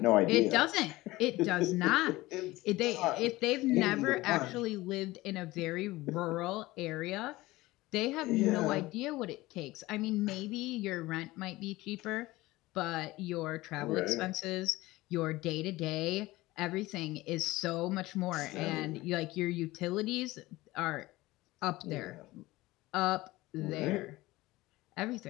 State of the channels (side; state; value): right; quieter; 19.2 dB